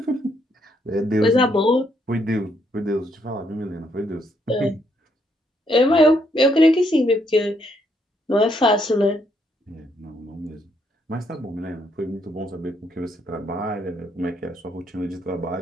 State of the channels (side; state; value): both; normal; correlation 0.73